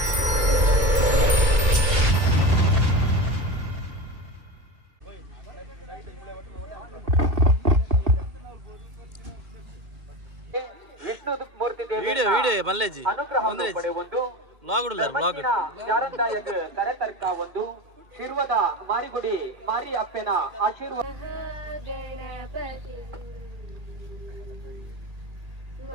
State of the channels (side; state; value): left; late; 2.2 ms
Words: Vishnu ಮೂರ್ತಿ ಅನುಗ್ರಹ ಪಡೆಯುವುದು ಶಾರಂದಾಯಗ ಕರೆತರ್ಕ ಒಂದು ಶಿರ್ವದ ಮಾರಿಗುಡಿ ಮಾರಿ ಅಪ್ಪನ ಆಶೀರ್ವಾದ